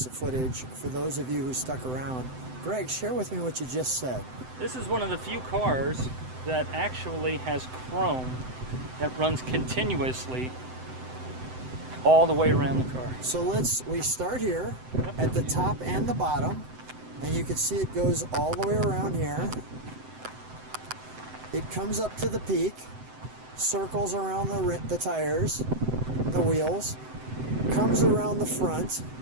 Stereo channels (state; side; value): late; left; 7.8 ms